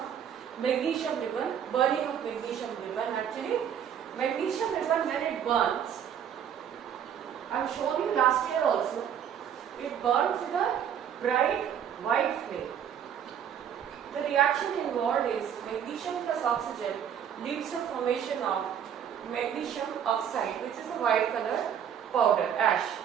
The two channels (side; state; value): left; quieter; 8.9 dB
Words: magnesium ribbon, burning of magnesium ribbon. Actually, magnesium ribbon, when it burns, I have shown you last year also, it burns with a bright white flame. The reaction involved is magnesium plus oxygen leads to formation of magnesium oxide, which is a white color powder, ash.